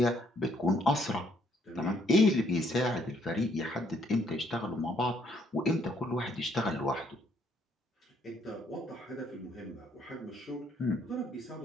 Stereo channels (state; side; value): normal; both; correlation 0.68